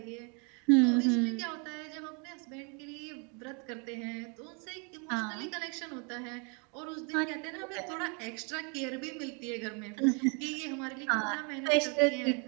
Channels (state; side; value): quieter; left; 35.3 dB